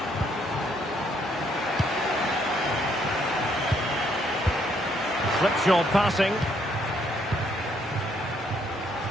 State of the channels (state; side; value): normal; both; correlation 0.70